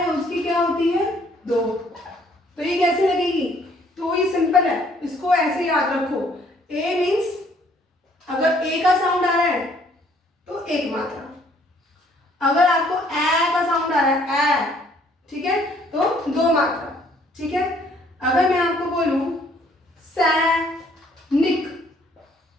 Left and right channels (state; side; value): normal; both; correlation 0.63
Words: उसकी क्या होती है, दो। तो ये कैसे लगेगी, तो ये सिंपल है, इसको ऐसे याद रखो, ए मीन्स अगर ए का साउंड आ रहा है तो एक मात्रा, अगर आपको ए का साउंड आ रहा है ए, ठीक है, तो दो मात्रा। ठीक है, अगर मैं आपको बोलूं सैनिक,